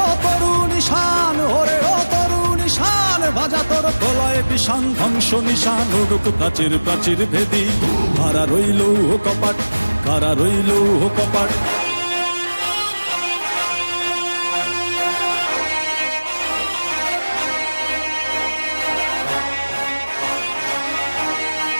ও তরুণ ঈশান, ওরে ও তরুণ ঈশান, বাজা তোর প্রলয় বিষান, ধ্বংস নিশান উড়ুক প্রাচীর প্রাচীর ভেদী। কারা রইল কপাট, কারা রইল কপাট।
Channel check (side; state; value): both; inverted; correlation -1.00